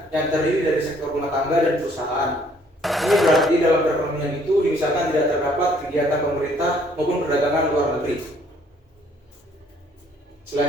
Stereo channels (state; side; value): normal; both; correlation 0.62